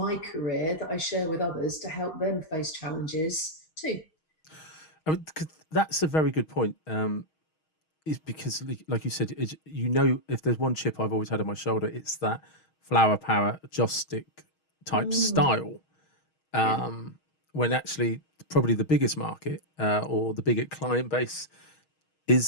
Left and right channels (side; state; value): right; late; 6.3 ms